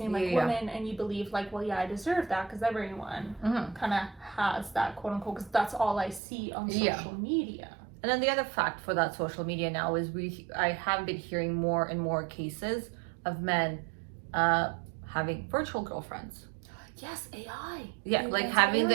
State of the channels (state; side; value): drops out; left; at 6.2 s